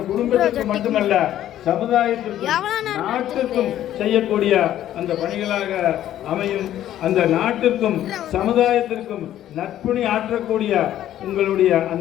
குடும்பத்திற்கு மட்டுமல்ல சமுதாயத்திற்கும் நாட்டிற்கும் செய்யக்கூடிய அந்த பணிகளாக அமையும். அந்த நாட்டிற்கும் சமுதாயத்திற்கும் நற்பணி ஆற்றக்கூடிய உங்களுடைய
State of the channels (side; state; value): right; quieter; 12.2 dB